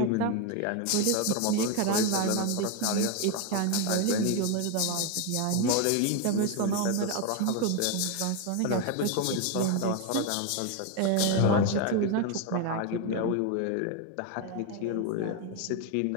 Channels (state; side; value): different; both; correlation 0.02